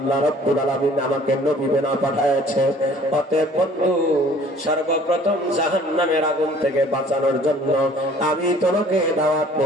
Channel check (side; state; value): both; normal; correlation 0.53